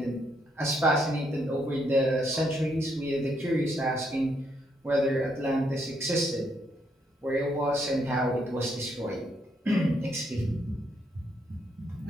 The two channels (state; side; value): normal; both; correlation 0.75